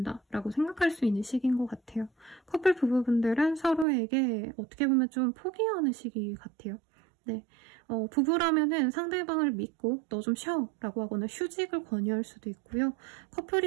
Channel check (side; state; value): left; drops out; at 3.9 s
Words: 라고 생각할 수 있는 시기인 것 같아요. 커플 부부분들은 서로에게 어떻게 보면 좀 포기하는 시기 같아요. 네, 부부라면은 상대방을 믿고 너 좀 쉬어 라고 하거나 휴직을 권유할 수도 있고요.